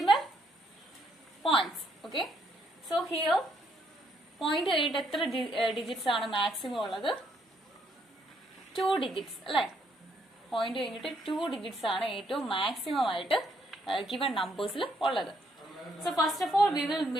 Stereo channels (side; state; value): both; normal; correlation 0.72